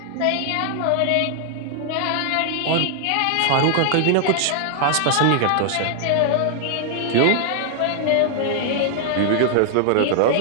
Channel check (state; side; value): different; both; correlation 0.00